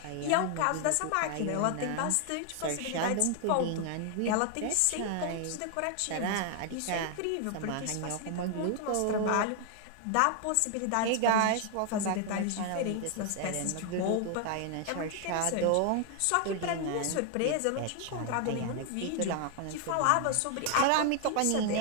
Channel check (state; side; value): different; both; correlation 0.00